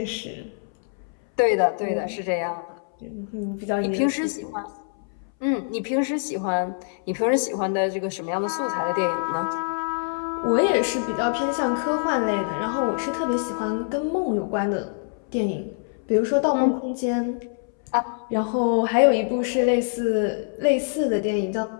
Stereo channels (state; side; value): silent; right; 62 dB below the other